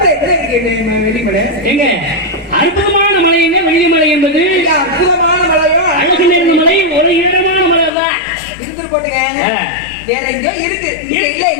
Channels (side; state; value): right; drops out; at 7.9 s